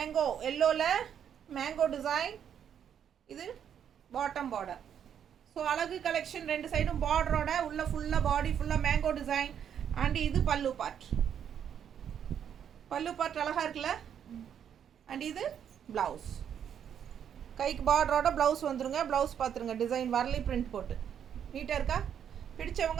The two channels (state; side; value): quieter; left; 8.7 dB